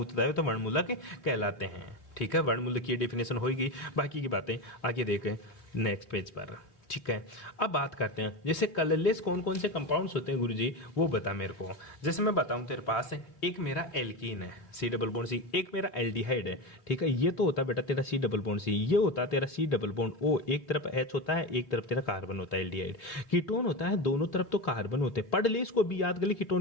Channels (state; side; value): late; right; 3.4 ms